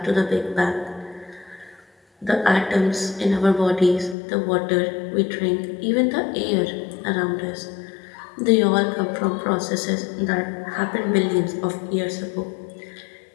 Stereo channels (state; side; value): drops out; right; at 4.2 s